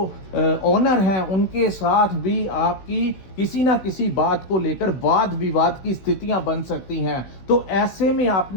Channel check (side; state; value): right; late; 16 ms